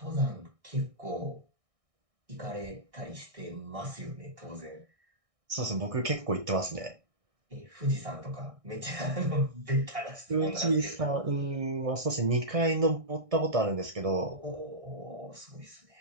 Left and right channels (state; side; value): late; left; 1.6 ms